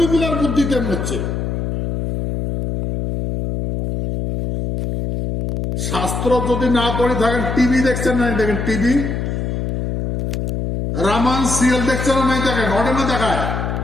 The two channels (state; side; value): noise; left; hum, 2 dB below the sound